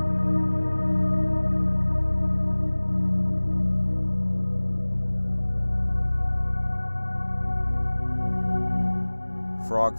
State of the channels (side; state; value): both; inverted; correlation -1.00